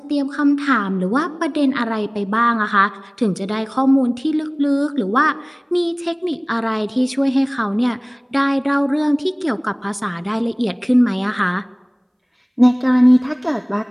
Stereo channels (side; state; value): both; identical; correlation 1.00